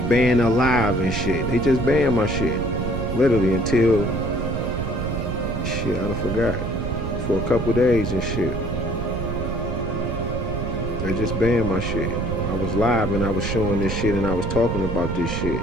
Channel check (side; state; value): right; noise; rumble, 3 dB below the sound